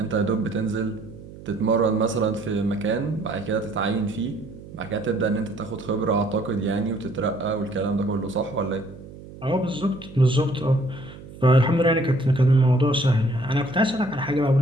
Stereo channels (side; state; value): right; noise; hum, 16 dB below the sound